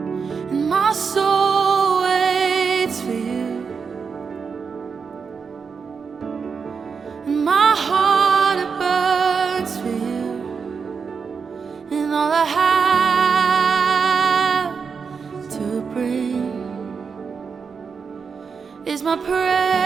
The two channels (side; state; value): left; quieter; 5.7 dB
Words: and my soul waits for you, and my heart it burns for you, and all I have to bring is my praise